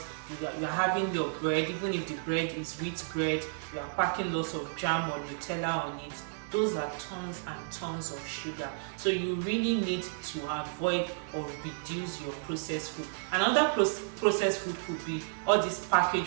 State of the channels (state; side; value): silent; left; 56 dB below the other